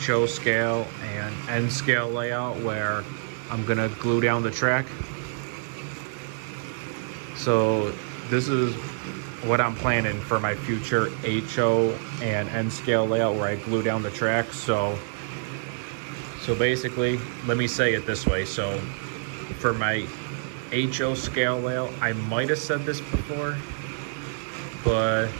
scale and N scale layout, where I'm gonna glue down the track. So this is what I'm planning for my future HO and N scale layout, where I glue down the track. So basically, let me say it this way. So for my HO scale layout, I might have said this before, but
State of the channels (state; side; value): silent; left; digital silence